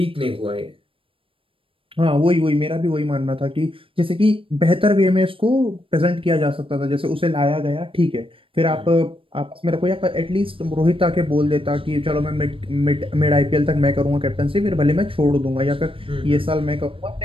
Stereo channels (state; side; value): late; left; 0.26 ms